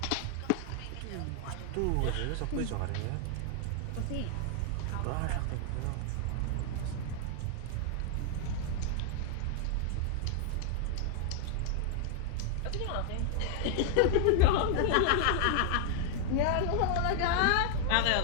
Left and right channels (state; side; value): different; both; correlation 0.00